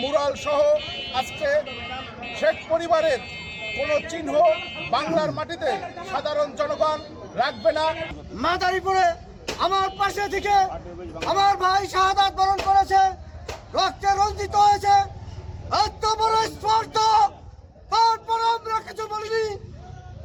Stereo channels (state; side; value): identical; both; correlation 1.00